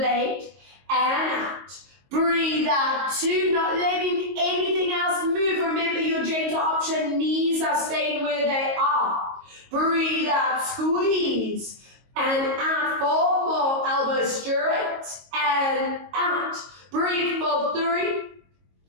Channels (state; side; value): late; left; 22 ms